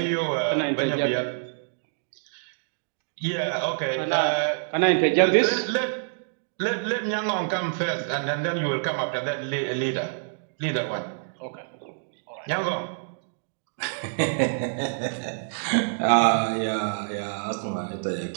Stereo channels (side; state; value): left; silent; digital silence